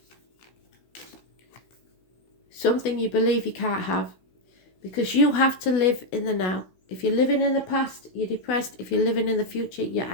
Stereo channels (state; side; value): late; right; 16 ms